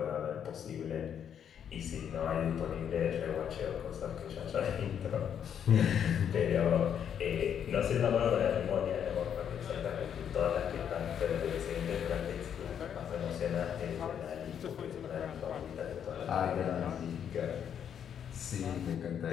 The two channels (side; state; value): right; quieter; 8.6 dB